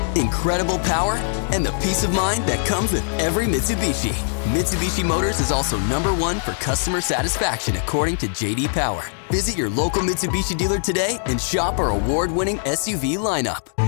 incredible power, and the peace of mind that comes with every Mitsubishi. Mitsubishi Motors is also #1 for customer satisfaction according to J.D. Power. Visit your local Mitsubishi dealer today and shop our award-winning SUV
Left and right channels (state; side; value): silent; right; digital silence